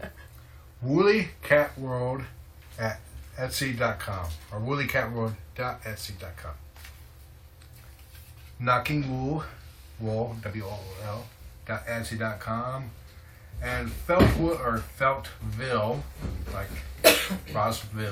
WoollyCatWorld at Etsy.com or WoollyCatWorld.Etsy.com. Knocking Wool, WOOL, .Etsy.com. And Feltwood or Feltville, like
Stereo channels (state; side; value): identical; both; correlation 1.00